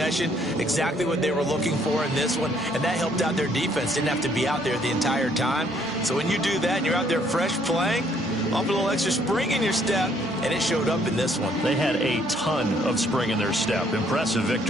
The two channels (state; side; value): normal; both; correlation 0.66